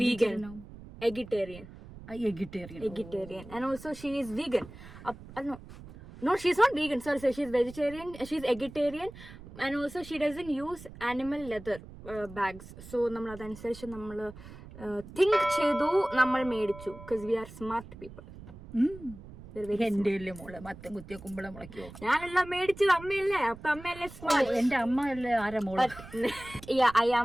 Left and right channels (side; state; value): right; noise; rumble, 16 dB below the sound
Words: vegan. Eggitarian. And also she is vegan. No, she's not vegan. Sorry, she's vegetarian. She's eggitarian, and also she doesn't use animal leather bags. So നമ്മൾ അതനുസരിച്ച് നമ്മൾ think ചെയ്തു, നമ്മൾ മേടിച്ചു. Because we are smart people. എന്റെ മോള് മത്തം കുത്തിയ കുമ്പളം മുളയ്ക്കോ? ഞാനെല്ലാം മേടിച്ചത് അമ്മയല്ലേ, അപ്പൊ അമ്മയല്ലേ സ്മാർട്ട്. എന്റെ അമ്മ അല്ലേ ആരാ മോള്? I